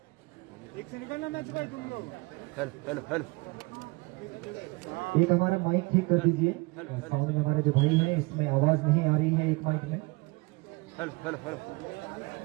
एक से निकलना मैच भाई तुम लोग। हेलो हेलो हेलो एक हमारा माइक ठीक कर दीजिए। साउंड में हमारे जो भाई है इसमें आवाज नहीं आ रही है एक माइक में। Hello hello hello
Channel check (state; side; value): quieter; left; 25.8 dB